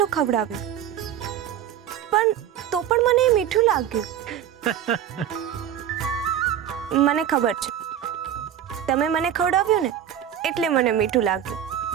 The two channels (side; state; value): left; quieter; 10.1 dB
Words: ખવડાવ્યું, પણ તો પણ મને એ મીઠું લાગ્યું. મને ખબર છે, તમે મને ખવડાવ્યું ને એટલે મને મીઠું લાગ્યું.